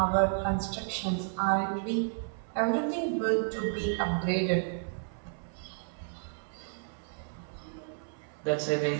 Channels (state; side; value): silent; left; 55 dB below the other